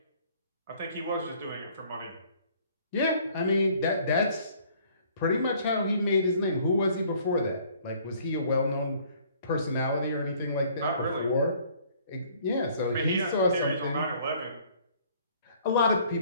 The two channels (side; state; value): both; inverted; correlation -0.58